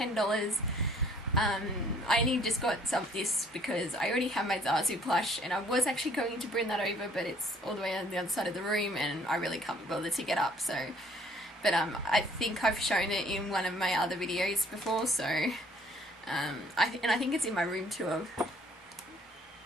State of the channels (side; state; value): both; normal; correlation 0.58